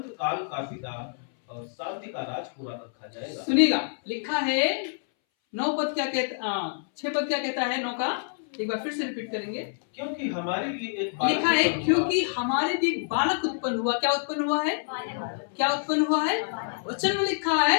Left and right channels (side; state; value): right; silent; 60 dB below the other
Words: काल का पिता और शांति का राजकुमार रखा जाएगा। सुनिएगा, लिखा है 9 पद क्या कहता, 6 पद क्या कहता है 9 का, एक बार फिर से रिपीट करेंगे। क्योंकि हमारे लिए एक बालक लिखा है क्योंकि हमारे लिए एक बालक उत्पन्न हुआ। क्या उत्पन्न हुआ है? क्या उत्पन्न हुआ है? वचन में लिखा है